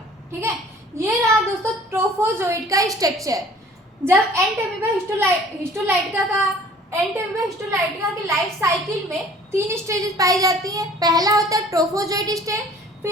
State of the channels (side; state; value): both; normal; correlation 0.51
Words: ठीक है। ये रहा दोस्तों ट्रोफोजोइट का स्ट्रक्चर। जब हिस्टोलाइटिका की लाइफ साइकिल में 3 स्टेजेस पाई जाती हैं। पहला होता है ट्रोफोजोइट स्टेज,